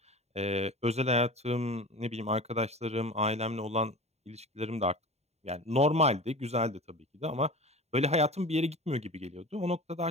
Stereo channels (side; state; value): left; late; 0.31 ms